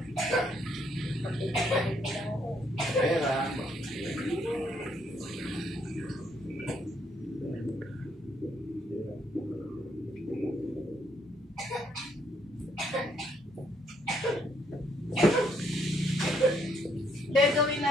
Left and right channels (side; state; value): both; normal; correlation 0.71